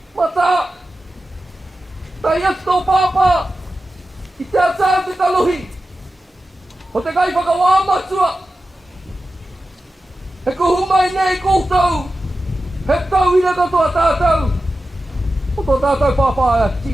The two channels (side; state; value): both; normal; correlation 0.93